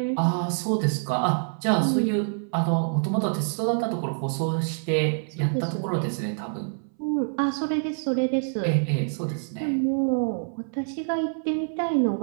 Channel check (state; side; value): silent; left; 61 dB below the other